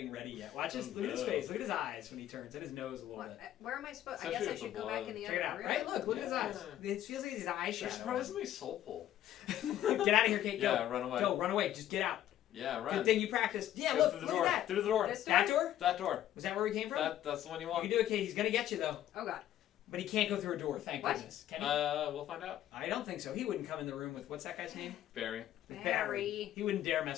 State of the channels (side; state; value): right; quieter; 12.2 dB